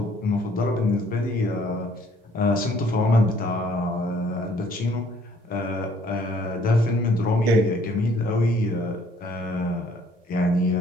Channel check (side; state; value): both; normal; correlation 0.61